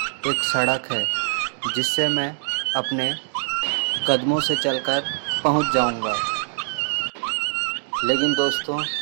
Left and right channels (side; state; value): left; silent; digital silence